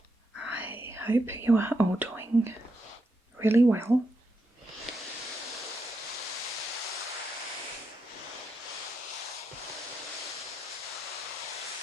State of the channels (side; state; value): both; normal; correlation 0.83